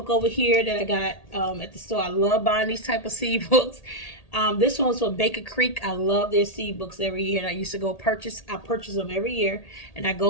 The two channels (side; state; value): right; late; 1.8 ms